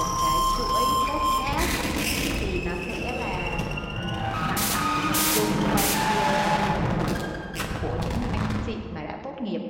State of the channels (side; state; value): both; identical; correlation 1.00